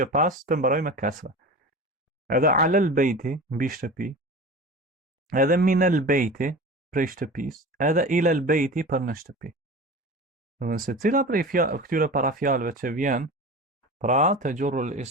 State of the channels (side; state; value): both; normal; correlation 0.33